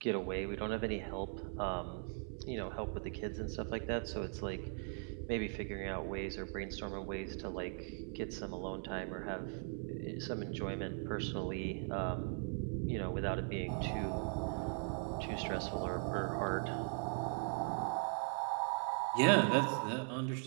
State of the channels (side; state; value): left; silent; 51 dB below the other